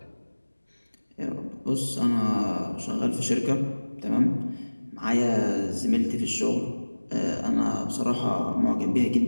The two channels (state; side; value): inverted; both; correlation -1.00